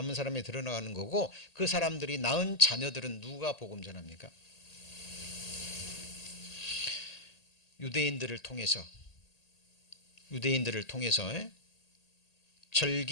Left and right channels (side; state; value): right; late; 1.8 ms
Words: 사람이 드러나는 거고 그 사람들이 낳은 자녀들은 누가 복음 전합니까? 유대인들을 통해서